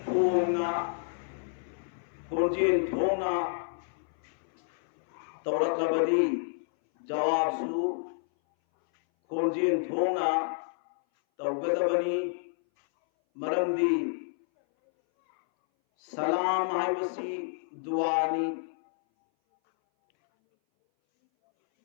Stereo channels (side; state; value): right; silent; 58 dB below the other